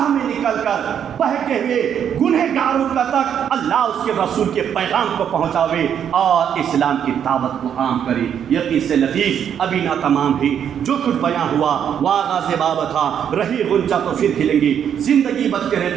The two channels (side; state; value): left; quieter; 8.7 dB